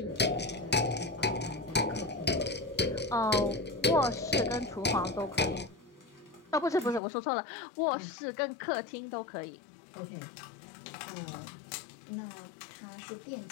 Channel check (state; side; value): drops out; right; at 7.0 s